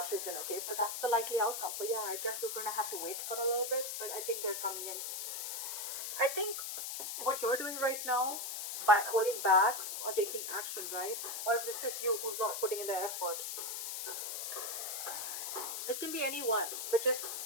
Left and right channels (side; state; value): left; noise; hiss, 4 dB below the sound